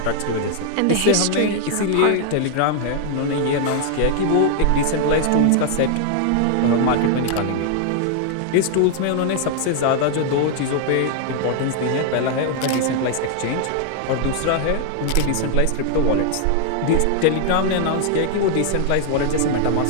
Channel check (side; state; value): both; different; correlation 0.00